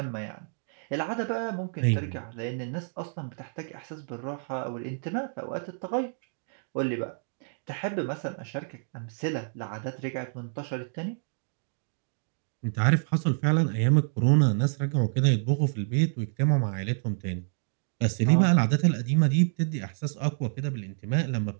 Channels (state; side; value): silent; left; digital silence